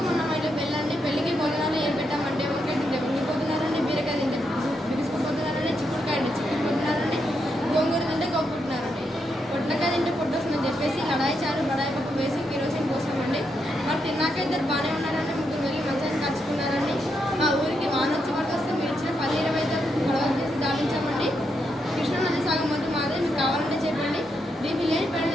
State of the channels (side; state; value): both; normal; correlation 0.81